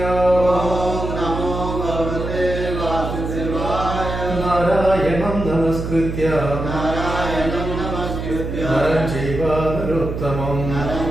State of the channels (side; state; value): right; noise; hum, 5 dB below the sound